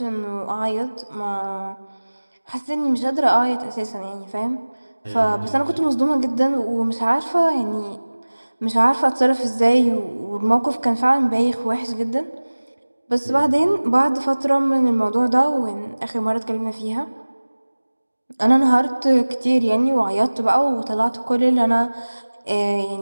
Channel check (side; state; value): both; inverted; correlation -1.00